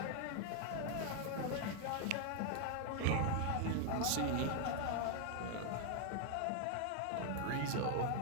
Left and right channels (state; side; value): different; both; correlation 0.00